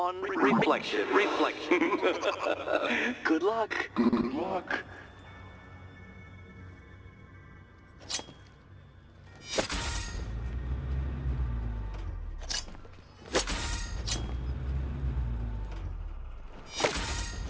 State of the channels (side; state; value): both; identical; correlation 1.00